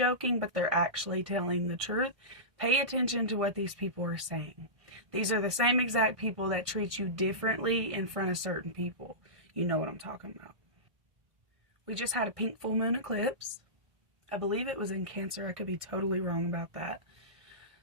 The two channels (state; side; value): late; left; 1.6 ms